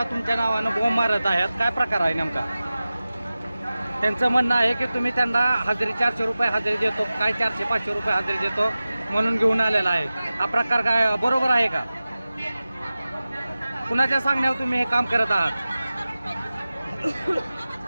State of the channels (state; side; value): inverted; both; correlation -0.96